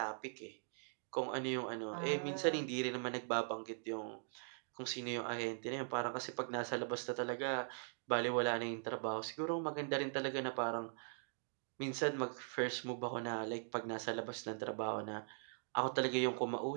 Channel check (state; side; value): silent; left; digital silence